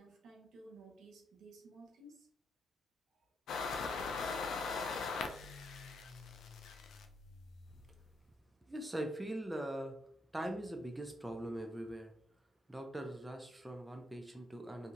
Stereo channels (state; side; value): normal; both; correlation 0.77